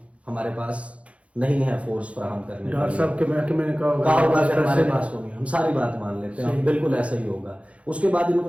ہمارے پاس نہیں ہے فورس فراہم کرنے، ڈاکٹر صاحب کے محکمے نے کہا ہوگا کہ ہمارے پاس ہوگی، ہم ساری بات مان لیتے ہیں، بالکل ایسا ہی ہوگا. اس کے بعد ان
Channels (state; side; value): late; left; 0.063 ms